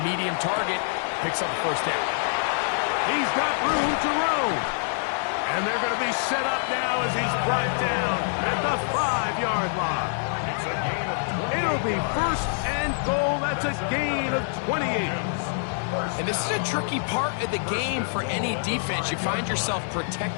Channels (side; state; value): right; silent; digital silence